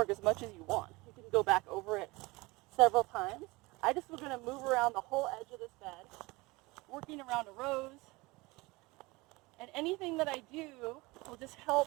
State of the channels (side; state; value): left; quieter; 23.1 dB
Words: as much as you want. You can go back over it several times. I just was going to move around the whole edge of this bed, working around a rose. And anything that I do will just help